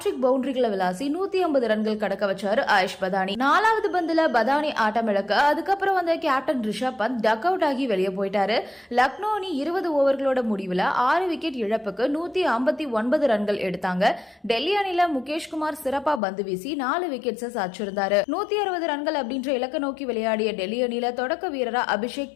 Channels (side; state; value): right; drops out; at 16.2 s